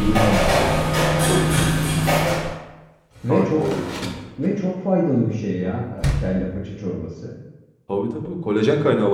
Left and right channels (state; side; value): identical; both; correlation 1.00